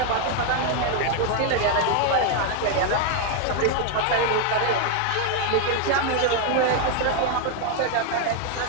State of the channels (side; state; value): both; different; correlation 0.01